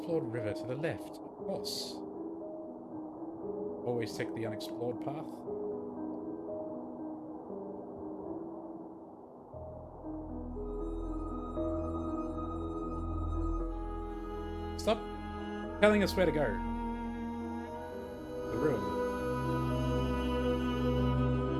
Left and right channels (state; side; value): identical; both; correlation 1.00